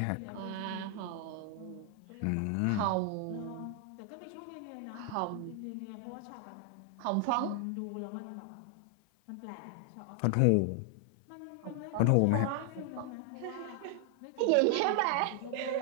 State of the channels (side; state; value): both; different; correlation 0.00